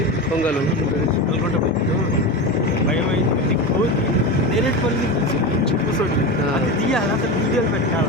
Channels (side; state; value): both; normal; correlation 0.22